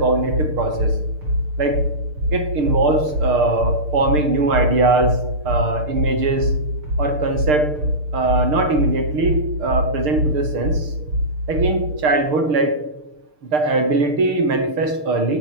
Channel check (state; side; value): late; left; 6.6 ms